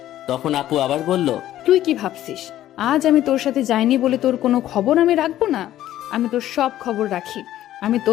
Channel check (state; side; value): quieter; right; 13.1 dB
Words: তখন আপু আবার বলল, তুই কি ভাবছিস আজ আমি তোর সাথে যাইনি বলে তোর কোনো খবর আমি রাখবো না? আমি তোর সব খবর রাখি। আমি